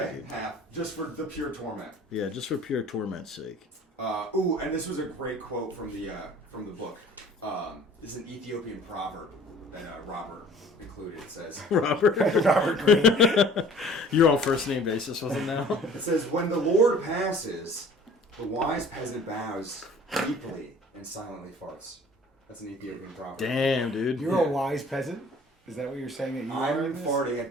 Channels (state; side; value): normal; both; correlation 0.49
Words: dude. half. Just for the pure torment. Yeah, just for pure torment's sake. Ooh, and this was a great quote from the book. This is an Ethiopian proverb that Robert included. It says, Robert. Robert Greene. You're on first name basis with him now. it says, when the Lord passes, the wise peasant bows deeply and silently farts. That's an Ethiopian proverb. Damn, dude. You're a wise peasant? Is that what you're saying that you are? I'm in this? farting at